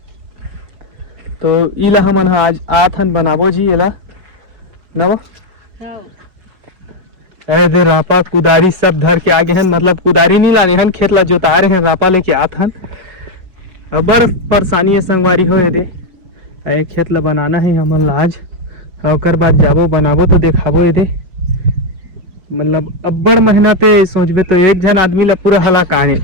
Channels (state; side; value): late; left; 5.4 ms